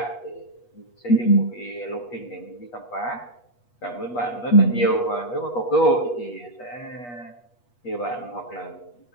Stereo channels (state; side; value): late; right; 8.3 ms